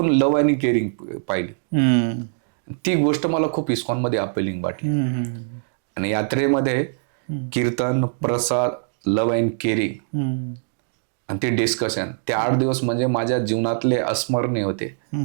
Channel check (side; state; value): left; silent; digital silence